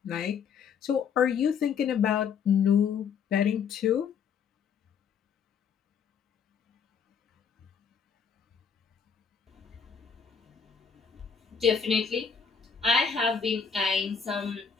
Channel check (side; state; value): right; quieter; 6.5 dB